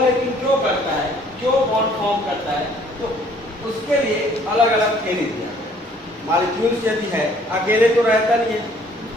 क्यों करता है, क्यों बॉन्ड फॉर्म करता है, तो उसके लिए अलग अलग थ्योरी दिया गया। मॉलिक्यूल्स यदि है अकेले तो रहता नहीं है,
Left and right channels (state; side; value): normal; both; correlation 0.59